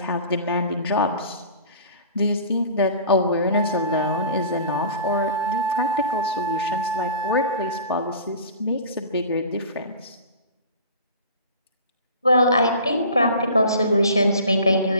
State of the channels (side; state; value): both; inverted; correlation -0.41